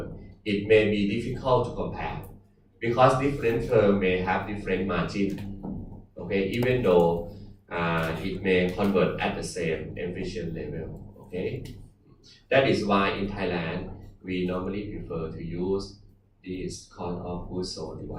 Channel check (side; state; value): both; identical; correlation 1.00